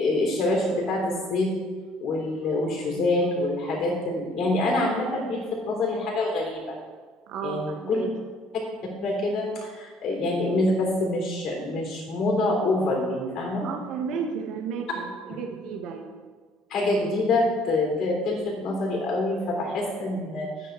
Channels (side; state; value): both; normal; correlation 0.60